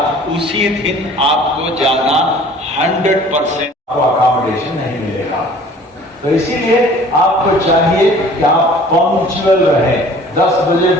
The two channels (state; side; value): normal; both; correlation 0.49